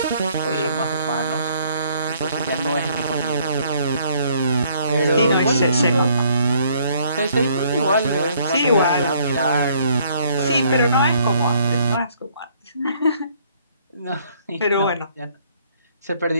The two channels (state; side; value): inverted; both; correlation -0.64